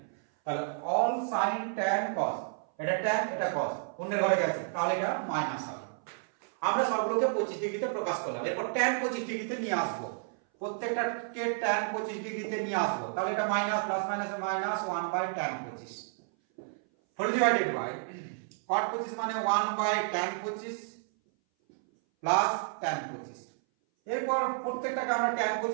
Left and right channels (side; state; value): left; silent; 57 dB below the other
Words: তাহলে অল সাইন tan cos, এটা tan এটা cos অন্যের ঘরে গেছে, তাহলে এটা মাইনাস হবে। আমরা সবগুলোকে 25 ডিগ্রিতে প্রকাশ করলাম। এরপর tan 25 ডিগ্রিতে নিয়ে আসবো, প্রত্যেকটাকে tan 25 ডিগ্রিতে নিয়ে আসবো, তাহলে এটা minus plus minus minus 1 by tan 25 whole divided by cot 25 মানে 1 বাই tan 25 প্লাস tan 25। এরপর প্রত্যেকটাকে আমরা tan